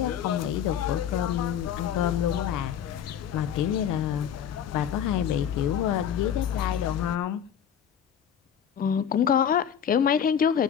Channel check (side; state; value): right; quieter; 8.8 dB